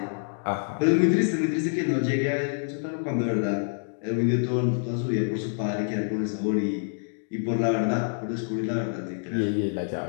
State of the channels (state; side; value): silent; right; digital silence